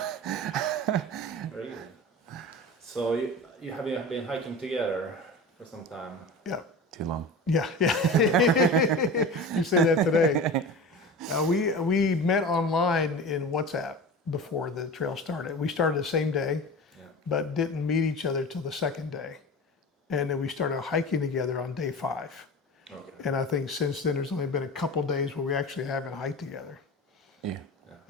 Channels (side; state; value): both; normal; correlation 0.32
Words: Very good. So you have been hiking together for some time? Yeah. Too long. Yeah. You say that today. We met online in WhatsApp before the trail started. We started the same day, but didn't meet each other till the second day. and then we started hiking together on day 5. Okay. And I think since then there's only been a couple days where we actually haven't hiked together. Yeah.